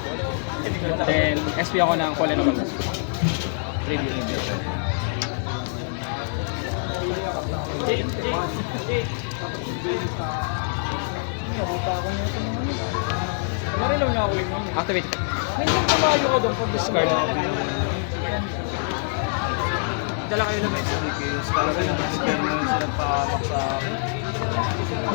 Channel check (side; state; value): right; silent; 62 dB below the other